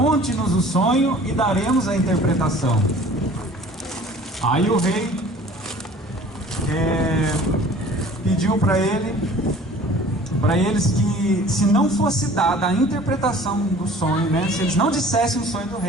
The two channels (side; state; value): both; normal; correlation 0.48